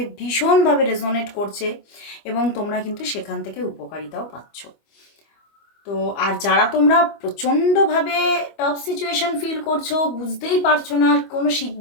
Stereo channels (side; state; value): right; late; 25 ms